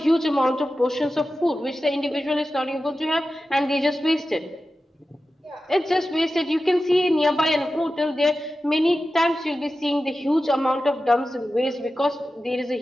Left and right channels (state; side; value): normal; both; correlation 0.93